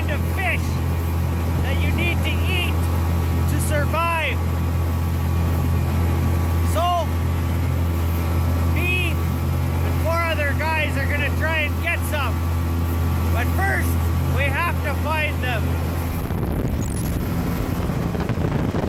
of fish that you need to eat to survive. So, me and 4 other guys are gonna try and get some. But first, we have to find them.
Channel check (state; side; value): identical; both; correlation 1.00